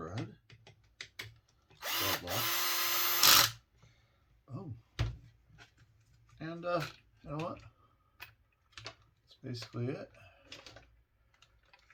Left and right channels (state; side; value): identical; both; correlation 1.00